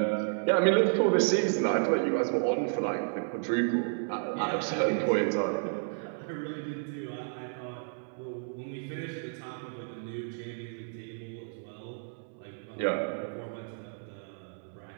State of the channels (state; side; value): silent; left; 57 dB below the other